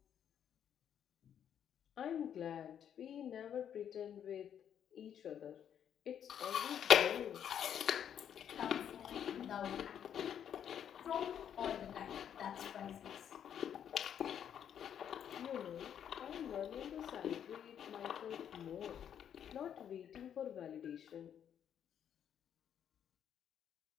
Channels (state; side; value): quieter; right; 9.1 dB